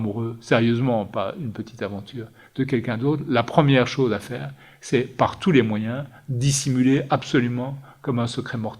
sérieusement, pas une petite aventure, de quelqu'un d'autre, la première chose à faire, c'est par tous les moyens dissimuler absolument comme un secret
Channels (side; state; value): both; identical; correlation 1.00